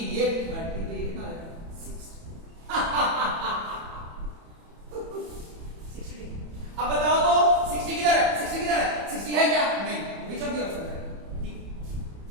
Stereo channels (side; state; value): left; late; 30 ms